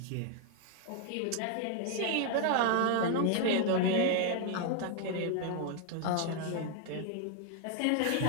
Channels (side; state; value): both; different; correlation 0.00